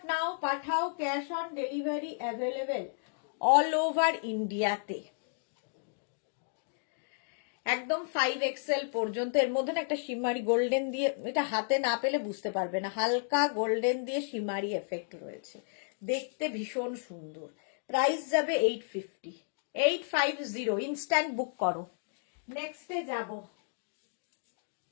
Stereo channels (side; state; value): right; silent; digital silence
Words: নাও, পাঠাও, cash on delivery available all over ইন্ডিয়াতে। একদম 5XL পর্যন্ত। এর মধ্যে না একটা শিমারি গোল্ডেন দিয়ে, এটা হাতে না পেলে বুঝতে পারবে না, হালকা গোল্ডেন দিয়ে শিমারি এফেক্ট রয়েছে, দেখতে ভীষণ সুন্দর। প্রাইস যাবে 850। 850। ইনস্ট্যান্ট বুক করো। নেক্সটে যাব।